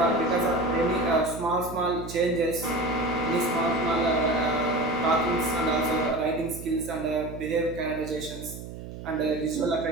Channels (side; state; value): right; noise; hum, 11 dB below the sound